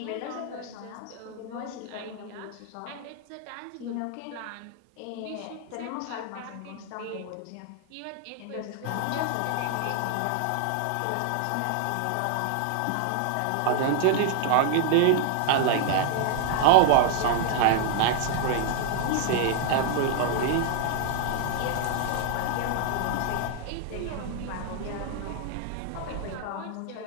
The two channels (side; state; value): both; different; correlation 0.00